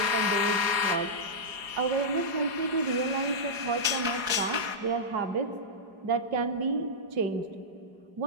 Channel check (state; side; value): late; left; 4.8 ms